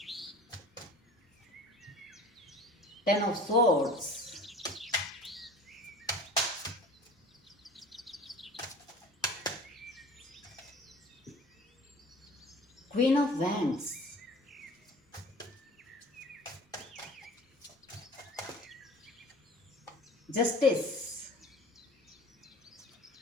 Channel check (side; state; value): both; normal; correlation 0.43